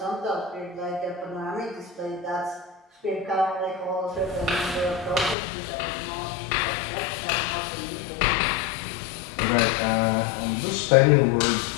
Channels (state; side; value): drops out; right; at 5.4 s